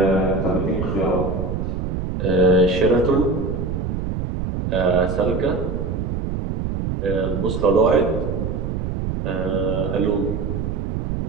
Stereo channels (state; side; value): noise; right; rumble, 2 dB below the sound